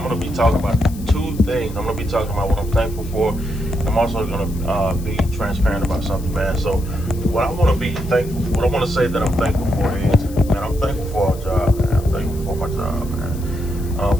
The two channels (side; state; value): left; noise; hiss, 19 dB below the sound